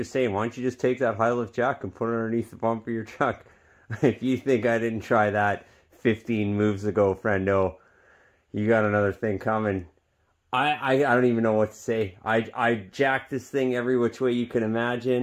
saying. Why don't you just take that high lift jack and put it underneath the bumper of your truck? If you think I didn't try that 15 moves ago, friendo, you got another thing coming. I don't even know what to say. I jacked this thing every which way you can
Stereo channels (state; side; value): identical; both; correlation 1.00